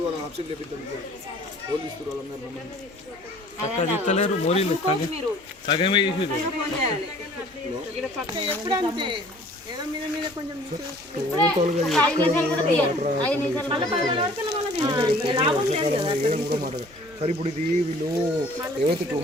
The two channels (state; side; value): normal; both; correlation 0.52